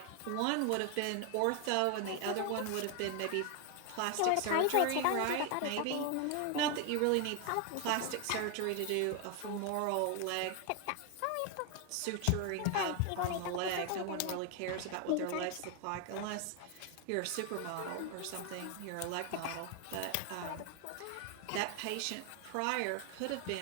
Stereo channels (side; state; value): both; different; correlation 0.01